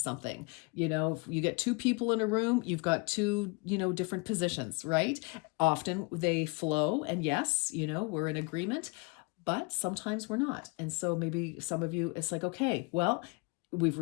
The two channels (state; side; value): quieter; right; 29.6 dB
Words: If you get two people in a room, you've got two, different positions, right? Often they flow, and yes, we're in agreement, but sometimes we're not. And so maybe some of you, it's like, okay, well, we've